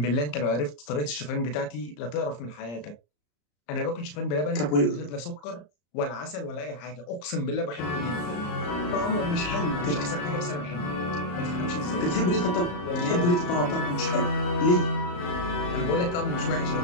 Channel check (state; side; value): late; right; 34 ms